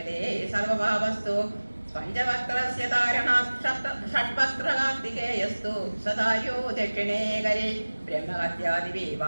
സർവഭാവസ്തു പഞ്ചവക്രസ്യ ധാരണാത് ഷഡ്വക്രകാർത്തികേയസ്തു സദായോ ദക്ഷിണേ കരേ ബ്രഹ്മഹത്യാദിവേ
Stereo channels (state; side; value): inverted; both; correlation -1.00